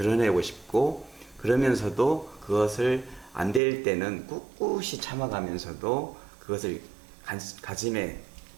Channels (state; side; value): drops out; left; at 3.6 s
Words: 싶고, 그러면서도 그것을 안 될 때는 꿋꿋이 참아가면서도 그것을 가짐에